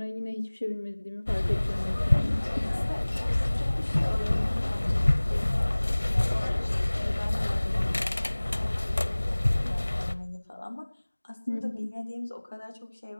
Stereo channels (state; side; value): inverted; both; correlation -1.00